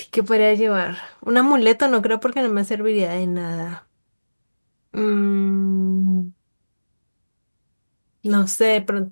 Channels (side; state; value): both; inverted; correlation -1.00